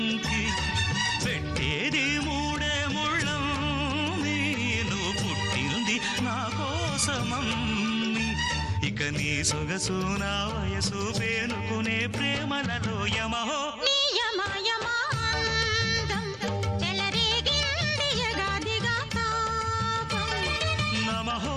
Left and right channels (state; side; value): identical; both; correlation 1.00